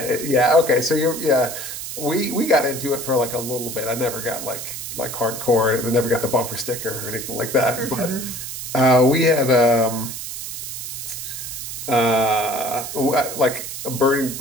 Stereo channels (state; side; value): noise; right; hiss, 7 dB below the sound